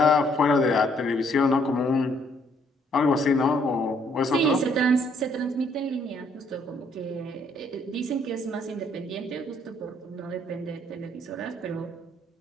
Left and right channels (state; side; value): normal; both; correlation 0.67